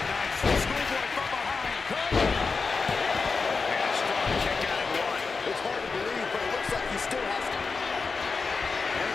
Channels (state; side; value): quieter; right; 4.6 dB